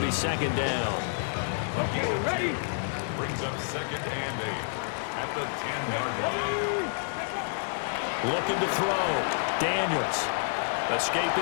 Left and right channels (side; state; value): right; silent; digital silence